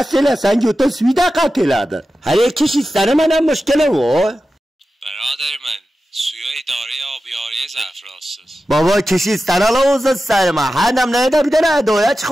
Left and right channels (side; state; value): both; normal; correlation 0.93